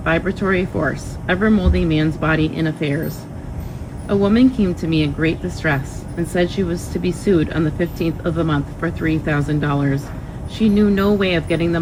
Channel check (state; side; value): identical; both; correlation 1.00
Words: vibratory force, ever molding man's body and affairs. A woman came to me in great distress and said she was to be sued on the 15th of the month for $3,000. She knew no way of getting the